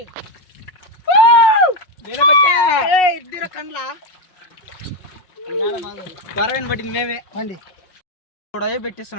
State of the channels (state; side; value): late; right; 5.4 ms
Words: ఇద్దరు కండ్ల పరవని పట్టింది మేమే పండి